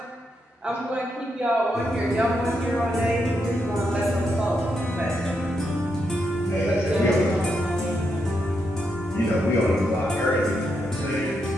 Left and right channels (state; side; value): normal; both; correlation 0.82